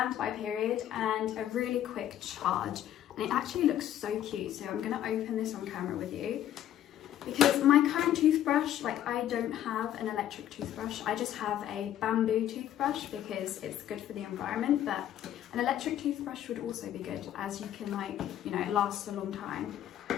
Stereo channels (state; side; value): quieter; right; 11.6 dB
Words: period and a really quick charge. And it actually looks so cute, so I'm gonna open this on camera with you. Because my current toothbrush, like, I don't have an electric toothbrush, I just have a bamboo toothbrush because it's good for the environment, but an electric toothbrush would also be good, as you can, like, you know, it lasts a long time.